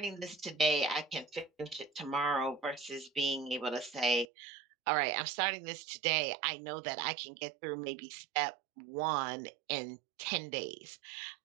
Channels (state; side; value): drops out; left; at 4.2 s